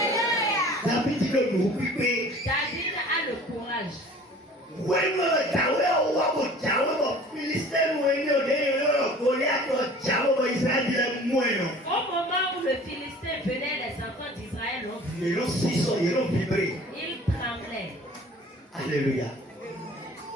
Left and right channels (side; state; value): both; normal; correlation 0.46